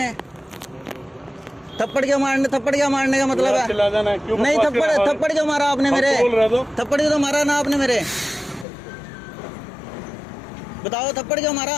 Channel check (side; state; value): right; drops out; at 8.7 s